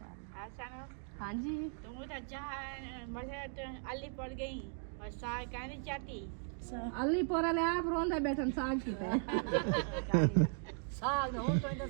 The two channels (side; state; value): left; silent; 53 dB below the other